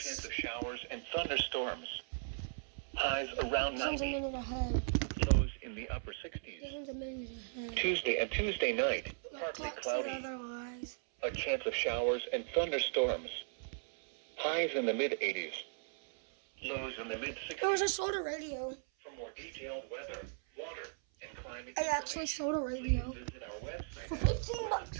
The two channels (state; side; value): silent; left; 53 dB below the other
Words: of showers and thunderstorms. Highs around Sounds a 90. minute ahead. Lows in the upper 60s. Sounds a minute ahead. Tuesday night, My partly clock said cloudy. otherwise. A chance of showers and thunderstorms. Highs in the mid-80s. Lows in the mid-60s. There was a soda radio. For more detailed weather, water, and climate I actually sold a radio please visit our website for